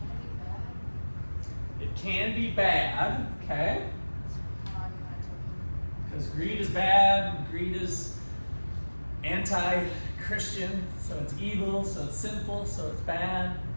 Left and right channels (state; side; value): inverted; both; correlation -1.00